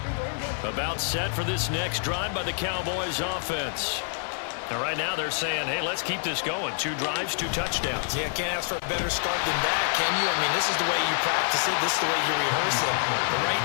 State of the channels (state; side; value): silent; right; 60 dB below the other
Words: About set for this next drive by the Cowboys offense. And right now they're saying, hey, let's keep this going. 2 drives, 2 touchdowns. Yeah, can't ask for a better start than that, can you? I mean, this is the way you practice it. This is the way you rehearse it. But right